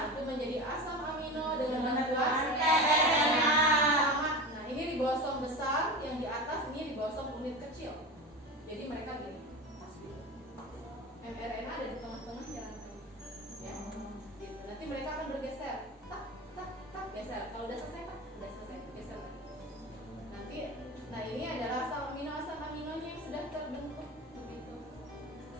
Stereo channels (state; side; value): normal; both; correlation 0.28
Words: Itu menjadi asam amino dengan bantuan tRNA. Nah, ini ribosom besar, yang di atas ini ribosom unit kecil. Jadi mereka gini, pas gitu. mRNA ada di tengah-tengahnya rantai. Ya, gitu. Nanti mereka akan bergeser, tak, tak, tak, geser. Kalau udah selesai, tak, udah selesai, geser lagi. Nanti, nah ini adalah asam aminonya yang sudah terbentuk begitu.